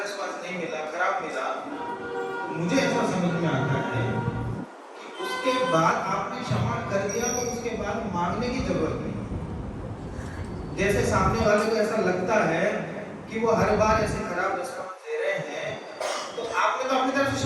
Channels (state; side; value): identical; both; correlation 1.00